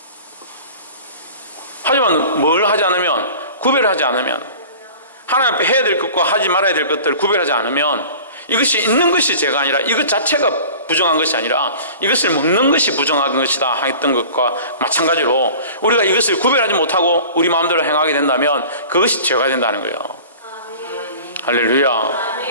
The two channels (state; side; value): inverted; both; correlation -0.41